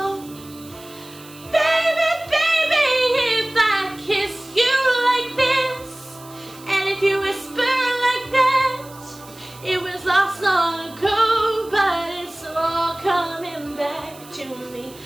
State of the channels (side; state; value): right; noise; hiss, 21 dB below the sound